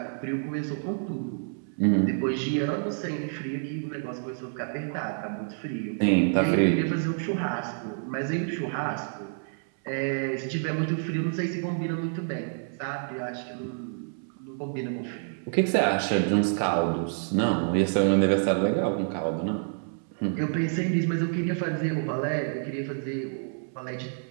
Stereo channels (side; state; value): left; silent; 58 dB below the other